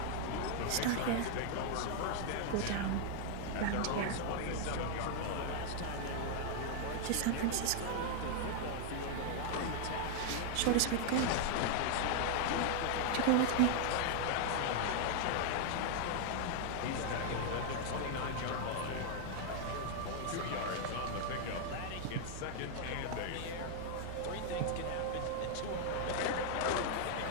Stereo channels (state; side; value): different; both; correlation 0.00